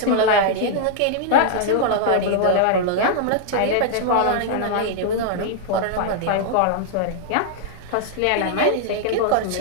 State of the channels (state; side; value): different; both; correlation -0.01